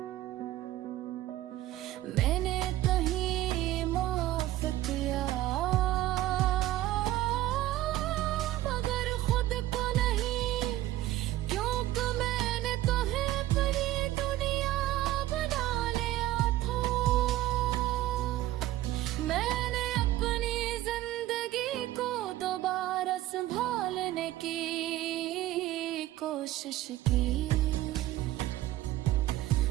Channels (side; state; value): left; quieter; 15.1 dB